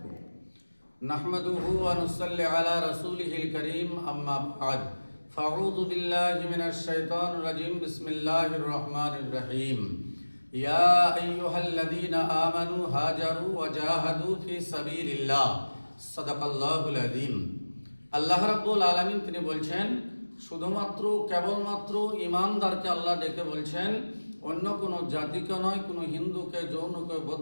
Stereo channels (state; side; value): inverted; both; correlation -1.00